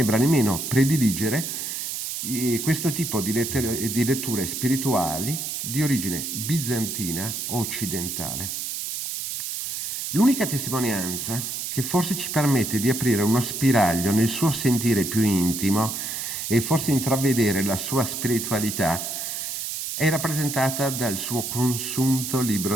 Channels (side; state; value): right; noise; hiss, 4 dB below the sound